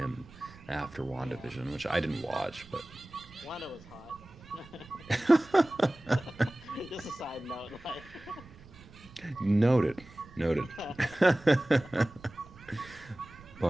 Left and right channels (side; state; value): right; noise; rumble, 21 dB below the sound